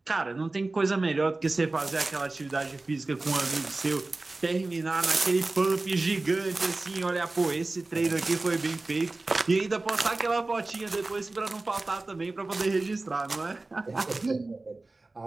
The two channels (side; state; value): left; quieter; 3.2 dB